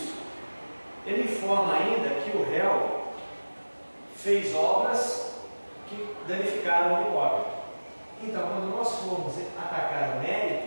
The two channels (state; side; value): inverted; both; correlation -1.00